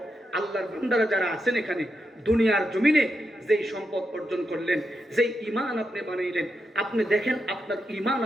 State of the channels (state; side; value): normal; both; correlation 0.85